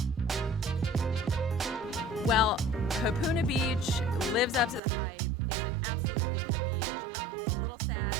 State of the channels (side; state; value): left; drops out; at 4.8 s